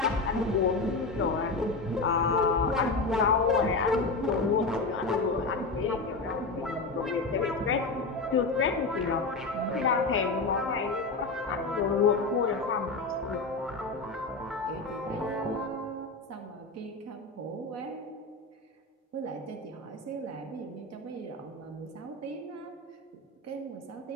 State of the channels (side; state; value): right; quieter; 3.6 dB